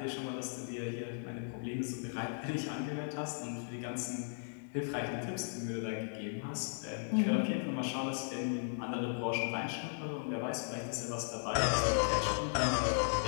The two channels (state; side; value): silent; right; digital silence